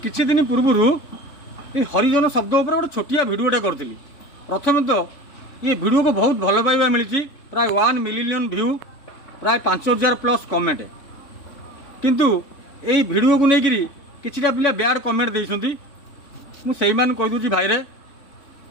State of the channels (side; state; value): right; late; 3.6 ms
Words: दिन पूर्वर ये हरिजन शब्द उपर गोटे छोटिया भिडियोटे करी। प्रथम तो ये भिडियो को बहुत भल पाइबा मिली, प्राय 1 मिलियन व्यू, प्राय 5000 प्लस कमेंट। किंतु यही भिडियो को लेकर किछिटा पिला बैड कमेंट देइछंती। मु सेई मान कहि दूची भाई रे,